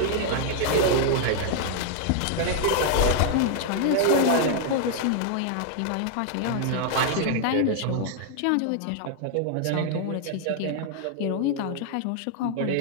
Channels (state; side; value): different; both; correlation -0.01